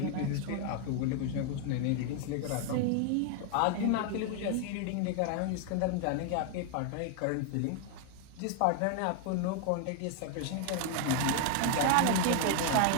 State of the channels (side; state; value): both; different; correlation 0.00